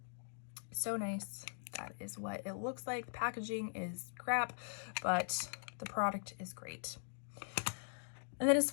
So nice. That is what it looks like. The packaging is crap, but the product is great. And then as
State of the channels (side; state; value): right; silent; digital silence